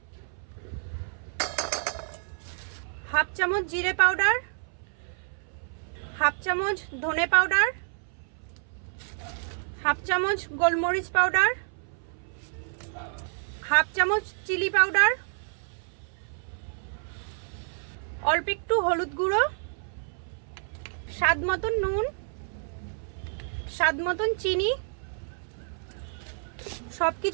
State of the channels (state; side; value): silent; left; 59 dB below the other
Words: হাফ চামচ জিরে পাউডার, হাফ চামচ ধনে পাউডার, হাফ চামচ গোলমরিচ পাউডার, হাফ চামচ চিলি পাউডার, অল্প একটু হলুদ গুঁড়ো, স্বাদ মতন নুন, স্বাদ মতন চিনি,